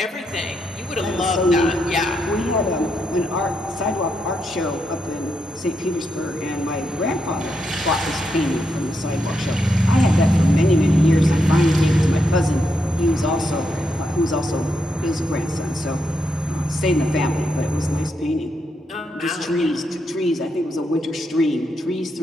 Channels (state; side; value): normal; both; correlation 0.81